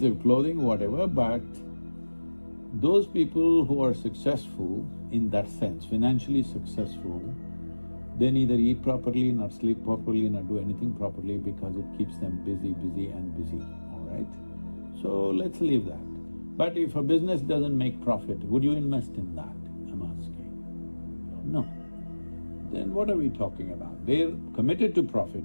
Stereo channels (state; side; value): inverted; both; correlation -1.00